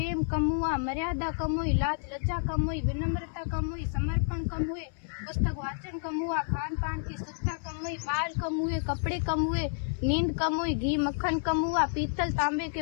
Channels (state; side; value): silent; right; 58 dB below the other